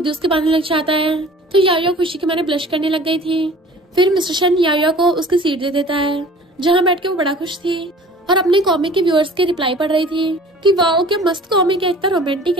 ही उसके बांधने लग जाता है। तो यायो खुशी के मारे ब्लश करने लग गई थी। फिर मिस्टर शन यायो को उसकी सीट दे देता है जहाँ बैठ के वो बड़ा खुश थी और अपने कॉमिक के व्यूअर्स के रिप्लाई पढ़ रही थी कि वाओ क्या मस्त कॉमिक है, इतना रोमांटिक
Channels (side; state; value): both; normal; correlation 0.46